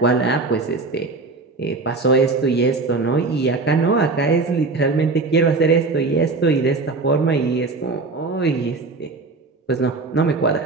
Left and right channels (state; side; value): quieter; left; 3.7 dB